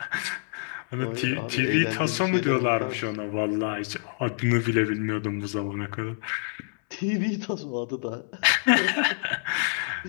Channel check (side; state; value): right; silent; 60 dB below the other